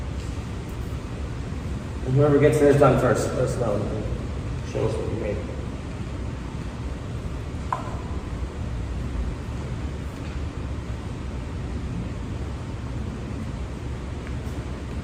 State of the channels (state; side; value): identical; both; correlation 1.00